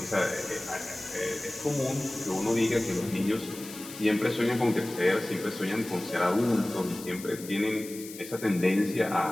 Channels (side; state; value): left; noise; hiss, 14 dB below the sound